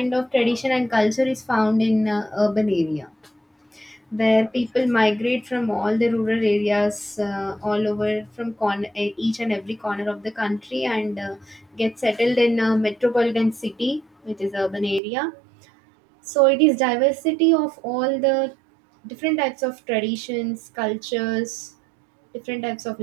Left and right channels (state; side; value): drops out; left; at 15.0 s